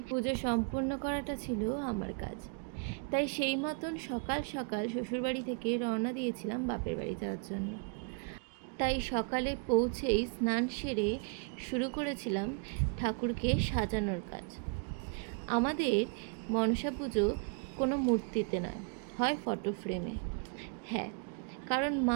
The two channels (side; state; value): left; quieter; 39.2 dB